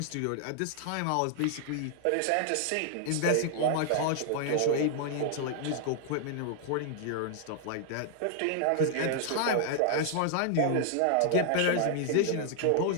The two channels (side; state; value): both; different; correlation 0.00